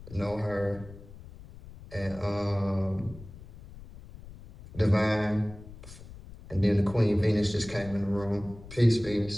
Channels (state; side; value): noise; left; rumble, 17 dB below the sound